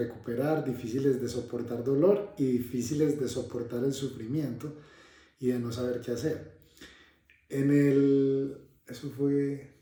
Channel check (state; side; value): identical; both; correlation 1.00